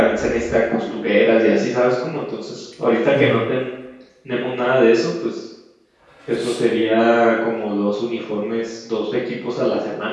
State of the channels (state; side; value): identical; both; correlation 1.00